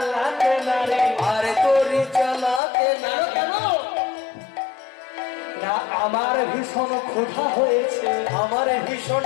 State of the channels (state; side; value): drops out; right; at 2.6 s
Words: না রে, আর তোরি চালাতে না। কেন না? আমার ভীষণ ক্ষুধা হয়েছে, আমার ভীষণ